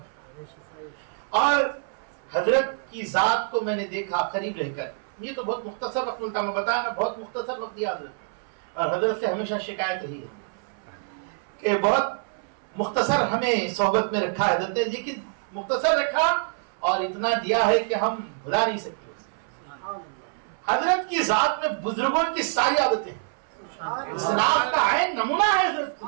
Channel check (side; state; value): left; silent; 61 dB below the other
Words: اور حضرت کی ذات کو میں نے دیکھا قریب رہ کر. یہ تو بہت مختصر وقت ملتا، میں بتایا نا بہت مختصر وقت دیا حضرت. اور حضرت سے ہمیشہ شکایت رہی ہے کہ بہت مختصر ہمیں صحبت میں رکھا ہے حضرت نے، لیکن مختصر رکھا اور اتنا دیا ہے کہ ہم بھلا نہیں سکتے. حضرت کی ذات میں بزرگوں کی ساری عادتیں، اسلاف کا عین نمونہ ہے حضرت.